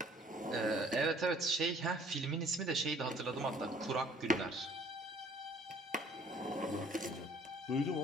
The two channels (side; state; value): both; normal; correlation 0.56